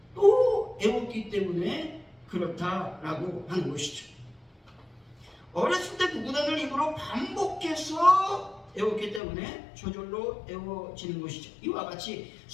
또 애웠기 때문에 그렇다라고 하는 것이죠. 어렸을 때 구구단을 입으로 반복해서 애웠기 때문에 저절로 애워지는 것이죠. 이와 같이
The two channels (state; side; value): drops out; right; at 9.2 s